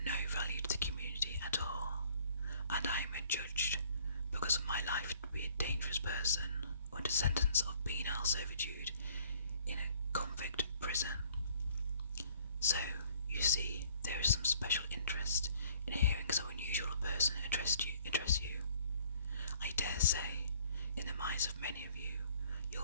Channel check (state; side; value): inverted; both; correlation -0.57